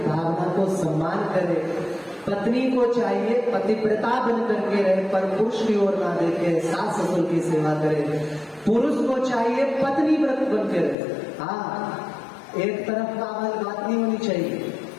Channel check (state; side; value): drops out; right; at 11.0 s